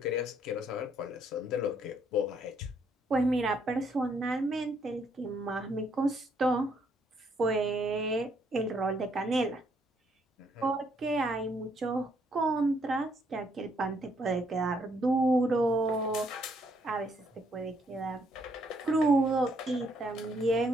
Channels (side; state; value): both; normal; correlation 0.71